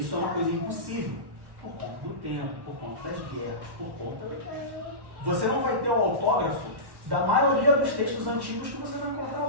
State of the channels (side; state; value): left; late; 1.1 ms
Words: é uma coisa impossível, por conta do tempo, por conta das guerras, por conta... Você não vai ter o autógrafo da maioria dos textos antigos que você vai encontrar